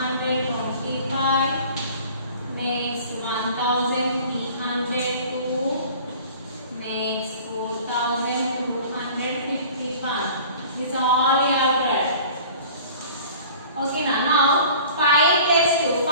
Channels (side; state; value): both; inverted; correlation -0.45